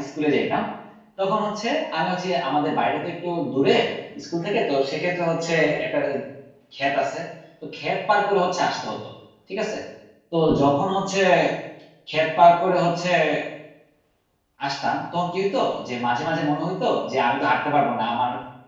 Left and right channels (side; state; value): both; identical; correlation 1.00